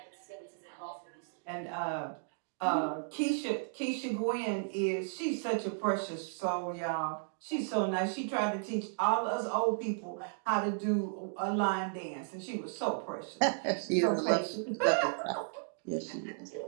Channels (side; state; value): left; silent; digital silence